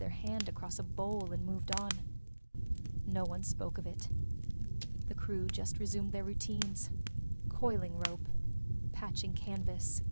hand across a bowl and moved on. No one spoke of it. The crew just resumed their routines. Coiling rope, patching canvas,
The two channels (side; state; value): both; inverted; correlation -1.00